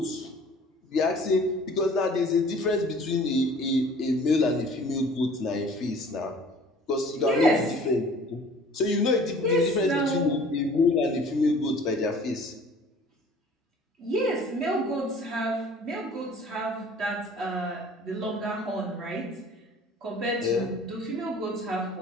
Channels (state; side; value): normal; both; correlation 0.49